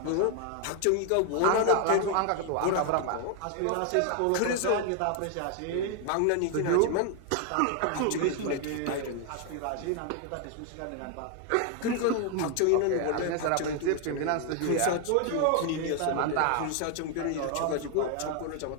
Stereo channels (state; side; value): different; both; correlation 0.01